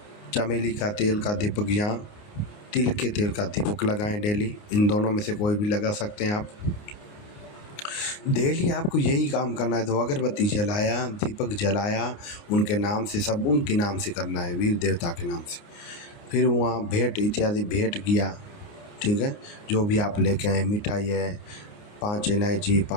चमेली का तेल का दीपक या तिल के तेल का दीपक लगाएं डेली। इन दोनों में से कोई भी लगा सकते हैं आप। डेली आपको यही काम करना है। तो अगरबत्ती जलाया, दीपक जलाया, उनके नाम से, सब उनके नाम से करना है, वीर देवता के नाम से। फिर वहाँ भेंट इत्यादि भेंट किया, ठीक है, जो भी आप लेके आए, मिठाई है, 5 इलायची,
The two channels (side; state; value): right; late; 29 ms